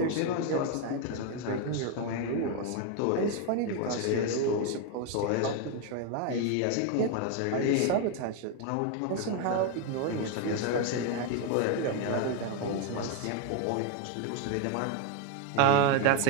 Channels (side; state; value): both; different; correlation 0.01